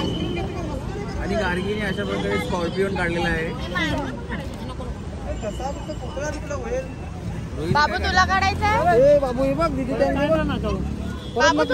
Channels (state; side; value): identical; both; correlation 1.00